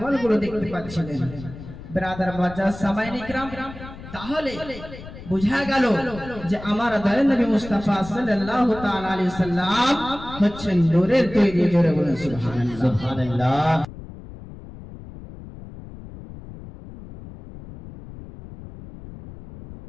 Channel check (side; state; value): left; noise; rumble, 14 dB below the sound